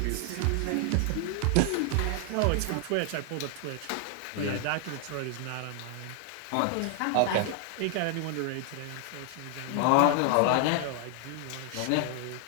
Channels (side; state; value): both; different; correlation 0.00